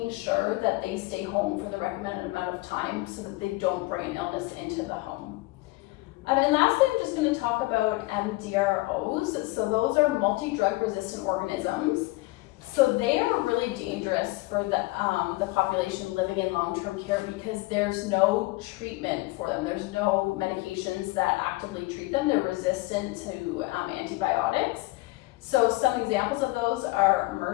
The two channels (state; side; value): quieter; right; 21.3 dB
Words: sure that they stay home for the recommended amount of time so that they don't bring illness into the home. And lastly, I'm just going to talk about MDROs. So those are multi-drug resistant organisms. So they are really dangerous for the population living in long-term care because there's no treatment for them. There's no medications that actively treat them. They're resistant to antibiotics. So some examples of those are